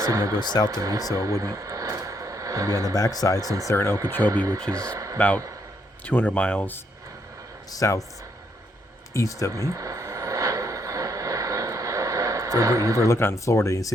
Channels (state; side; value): normal; both; correlation 0.74